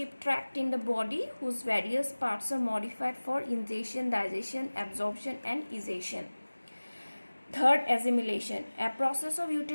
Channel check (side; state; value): both; inverted; correlation -1.00